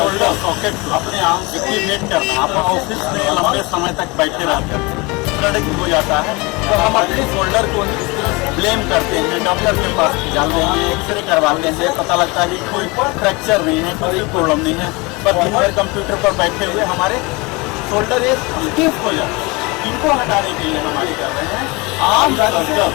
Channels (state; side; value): quieter; right; 26.0 dB